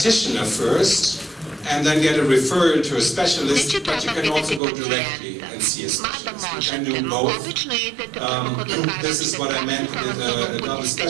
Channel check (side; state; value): left; drops out; at 4.6 s